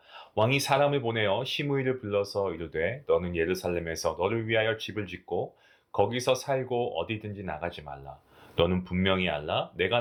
왕이 사람을 보내어 시므이를 불러서 이르되 너는 예루살렘에서 너를 위하여 집을 짓고 거기서 살고 어디든지 나가지 말라. 너는 분명히 알라. 내가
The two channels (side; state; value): both; identical; correlation 1.00